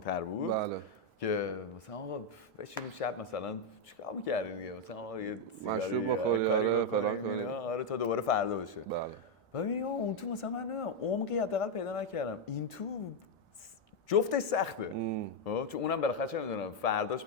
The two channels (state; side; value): late; right; 1.1 ms